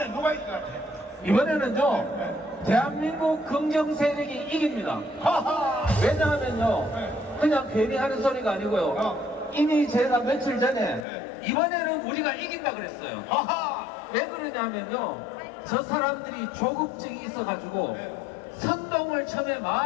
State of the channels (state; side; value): drops out; right; at 11.1 s